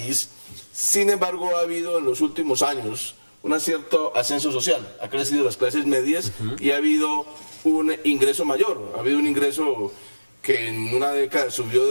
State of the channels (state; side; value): inverted; both; correlation -1.00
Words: sin embargo, ha habido en los últimos años un cierto ascenso social. Ha crecido las clases medias y ha habido un ingreso mayor. Ha habido un ingreso que en una década